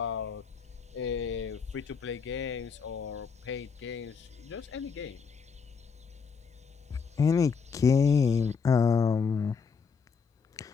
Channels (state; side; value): quieter; right; 5.7 dB